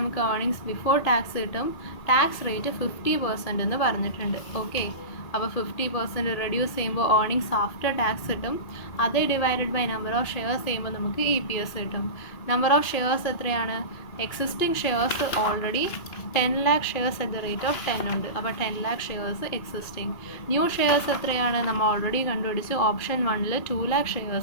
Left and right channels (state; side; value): late; right; 2.5 ms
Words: ഏർണിങ്സ് ബിഫോർ ടാക്സ് കിട്ടും. ടാക്സ് റേറ്റ് 50% എന്ന് പറഞ്ഞിട്ടുണ്ട്. ഓക്കെ, അപ്പോൾ 50% റെഡ്യൂസ് ചെയ്യുമ്പോൾ ഏർണിങ്സ് ആഫ്റ്റർ ടാക്സ് കിട്ടും. അത് divided by number of shares ചെയ്യുമ്പോൾ നമുക്ക് EPS കിട്ടും. നമ്പർ ഓഫ് ഷെയർസ് എത്രയാണ്? Existing shares already 10 lakh shares at the rate of 10 ഉണ്ട്. അപ്പോൾ 10 lakh shares existing. New shares എത്രയാണ്? നമ്മൾ ഓൾറെഡി കണ്ടുപിടിച്ചു. ഓപ്ഷൻ 1ൽ 2 lakh